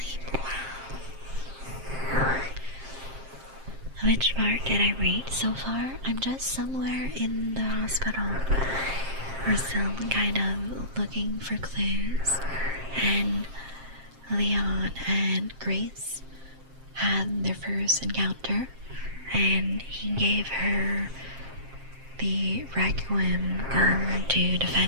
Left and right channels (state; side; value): late; left; 7.5 ms